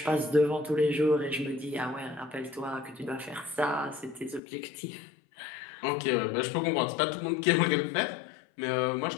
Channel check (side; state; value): right; drops out; at 4.4 s